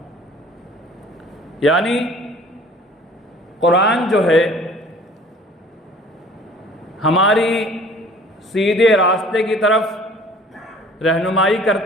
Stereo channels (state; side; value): normal; both; correlation 0.50